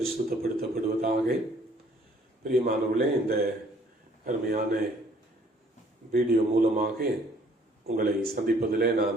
பிரியமானவர்களே, இந்த அருமையான வீடியோ மூலமாக உங்களை சந்திப்பதிலே நான்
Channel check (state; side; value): normal; both; correlation 0.59